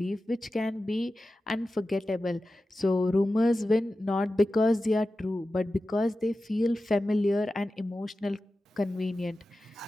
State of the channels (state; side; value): normal; both; correlation 0.94